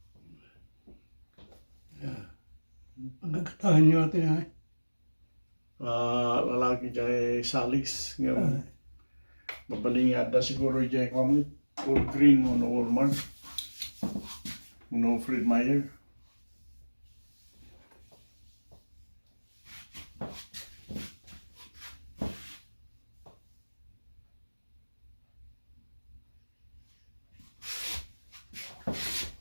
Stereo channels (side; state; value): both; inverted; correlation -1.00